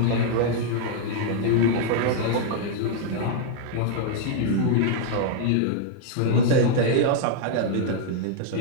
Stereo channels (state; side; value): different; both; correlation -0.01